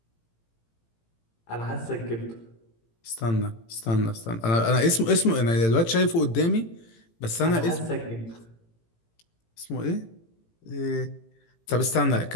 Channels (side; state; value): right; late; 18 ms